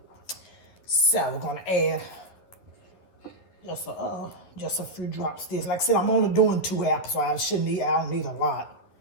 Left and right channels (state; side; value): late; right; 11 ms